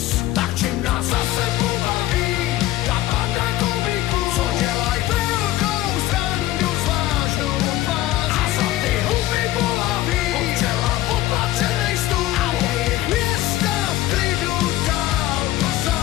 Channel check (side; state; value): right; quieter; 15.3 dB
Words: Tak čím nás zase pobaví ta banda komiků, co dělaj velkou srandu s vážnou tváří. A za ty huby bolaví občela opatřenej stůl a jejich města v klidu dál tu